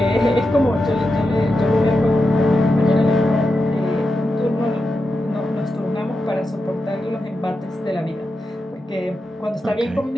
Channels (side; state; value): both; normal; correlation 0.89